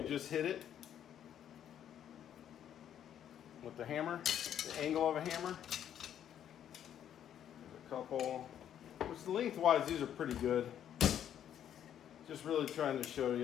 just hit it with the hammer, the angle of a hammer. There's a couple, which lengthwise these are pretty good. Just really trying to show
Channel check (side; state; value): right; quieter; 9.9 dB